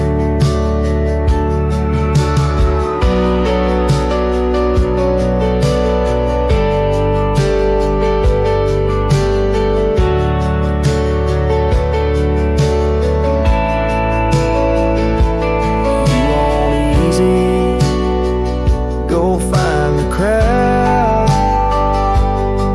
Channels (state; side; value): identical; both; correlation 1.00